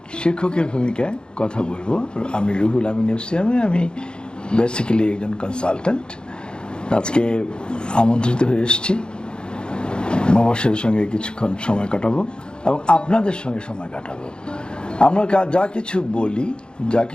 শিক্ষকের ভূমিকায় কথা বলবো। আমি রুহুল আমিন এফসিয়ামে, আমি বেসিক্যালি একজন কনসালট্যান্ট। আজকে আমন্ত্রিত হয়ে এসেছি, মবাশিরের সঙ্গে কিছুক্ষণ সময় কাটাবো এবং আপনাদের সঙ্গে সময় কাটাবো। আমরা যা কিছু বলি, যা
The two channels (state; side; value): late; right; 0.050 ms